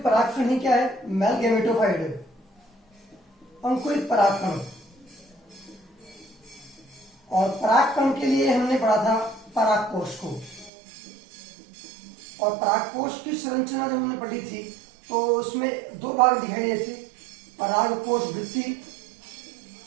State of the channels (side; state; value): left; drops out; at 10.7 s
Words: परागकण ही क्या है, मेल गैमेटोफाइट है, अंकुरित परागकण। और परागकण के लिए हमने पढ़ा था परागकोश को, और परागकोश की संरचना जब हमने पढ़ी थी तो उसमें दो भाग दिखाई देते थे, परागकोश भित्ति